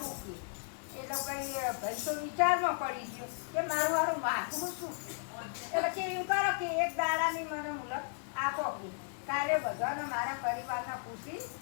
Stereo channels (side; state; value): right; silent; 54 dB below the other